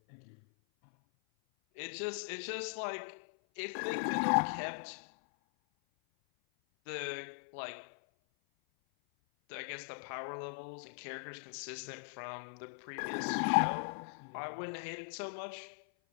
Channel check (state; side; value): silent; right; 51 dB below the other